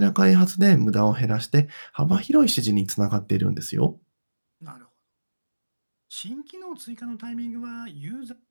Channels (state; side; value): inverted; both; correlation -1.00